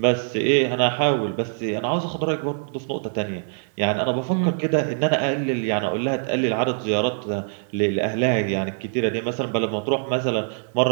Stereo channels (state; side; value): silent; left; digital silence